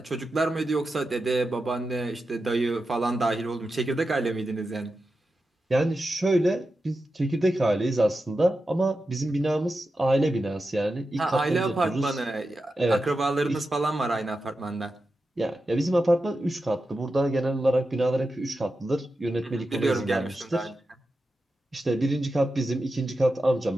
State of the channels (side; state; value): both; normal; correlation 0.90